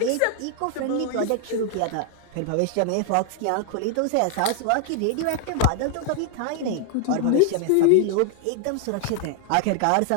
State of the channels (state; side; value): different; both; correlation 0.00